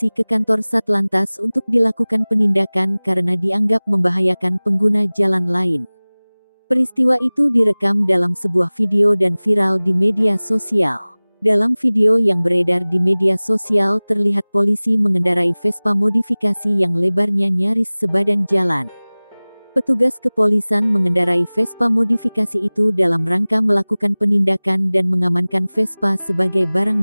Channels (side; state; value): both; inverted; correlation -1.00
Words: ke kantor Satlantas untuk dilakukan penindakan karena dianggap membahayakan pengguna jalan lain. Peristiwa itu direkam dalam sebuah video dan viral di media sosial. Dalam video yang beredar di media sosial terlihat polisi mengendarai Vespa modifikasi yang lebarnya nyaris sebadan jalan. Petugas kepolisian mengendarai Vespa modifikasi itu dalam rangka melakukan penindakan dan mengamankan Vespa sebagai